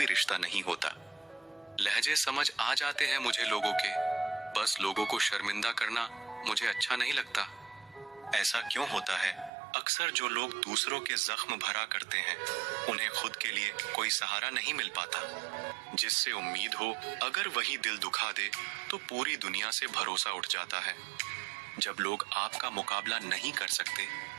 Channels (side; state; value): left; drops out; at 9.5 s